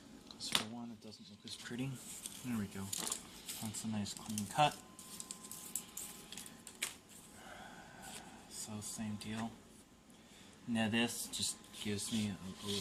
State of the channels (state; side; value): identical; both; correlation 1.00